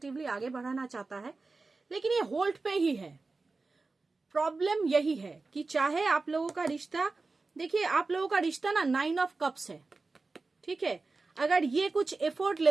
आगे बढ़ाना चाहता है, लेकिन ये होल्ड पे ही है। प्रॉब्लम यही है कि चाहे आप लोगों का रिश्ता, देखिए आप लोगों का रिश्ता ना 9 ऑफ कप्स है, ठीक है। अगर ये कुछ एफर्ट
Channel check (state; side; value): quieter; left; 3.8 dB